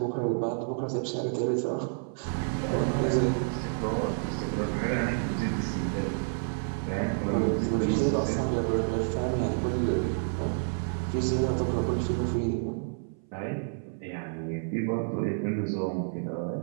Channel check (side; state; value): left; silent; 58 dB below the other